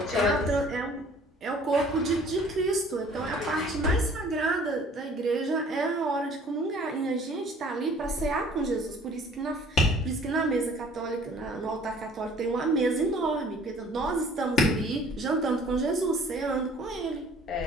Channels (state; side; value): normal; both; correlation 0.53